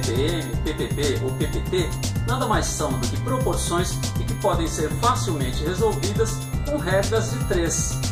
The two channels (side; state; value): both; identical; correlation 1.00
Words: ppb ou ppt, nada mais são do que proporções e que podem ser facilmente resolvidas com regras de